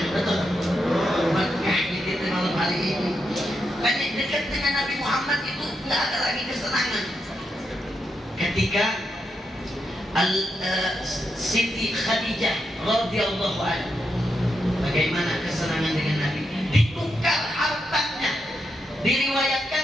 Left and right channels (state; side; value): normal; both; correlation 0.84